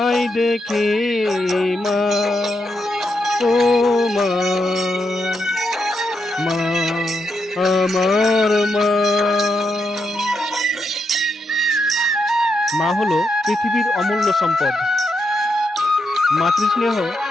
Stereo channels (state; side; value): normal; both; correlation 0.82